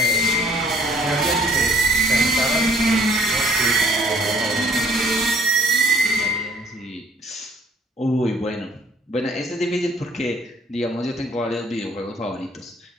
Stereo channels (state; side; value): normal; both; correlation 0.61